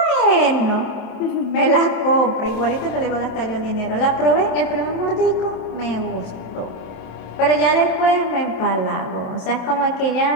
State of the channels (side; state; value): right; late; 27 ms